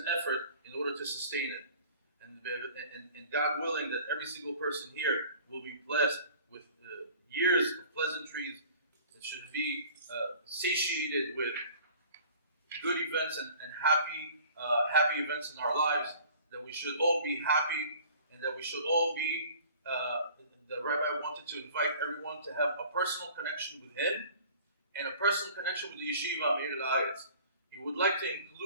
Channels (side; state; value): both; inverted; correlation -0.47